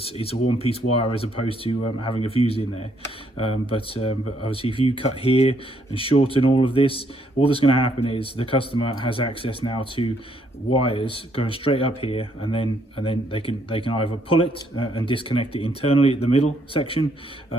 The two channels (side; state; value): both; normal; correlation 0.71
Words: a one-piece wire as opposed to having a fuse in there. But obviously, if you cut here and shorten all of this, all that's going to happen is the customer has access now to wires going straight up here, and then they can either pull it and disconnect it internally at the middle section,